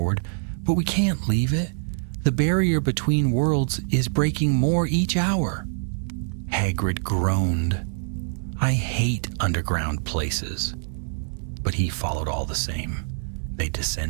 "But we can't leave it. The barrier between worlds is breaking more each hour." Hagrid groaned. "I hate underground places." But he followed all the same. They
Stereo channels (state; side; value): silent; left; 62 dB below the other